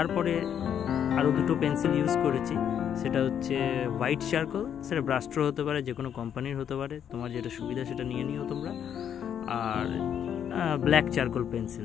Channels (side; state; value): right; quieter; 8.9 dB